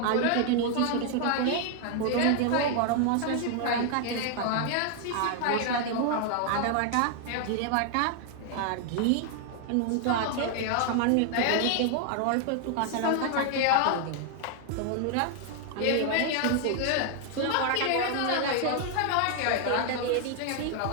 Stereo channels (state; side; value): different; both; correlation 0.00